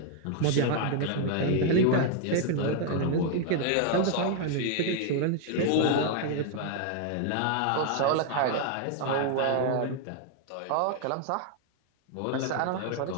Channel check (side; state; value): both; different; correlation 0.00